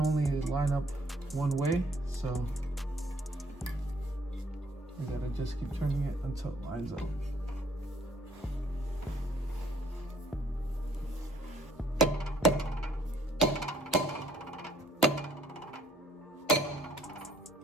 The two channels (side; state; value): both; normal; correlation 0.62